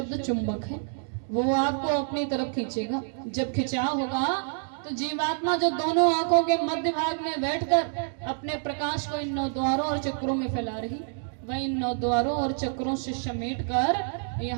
चुंबक है, वो आपको अपनी तरफ खींचेगा। जब खिंचाव होगा तो जीवात्मा जो दोनों आंखों के मध्य भाग में बैठकर अपने प्रकाश को इन 9 द्वारों और चक्रों में फैला रही, वह इन 9 द्वारों और चक्रों से समेट कर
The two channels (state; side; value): silent; left; 60 dB below the other